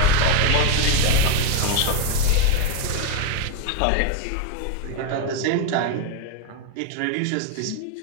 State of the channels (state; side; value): different; both; correlation 0.01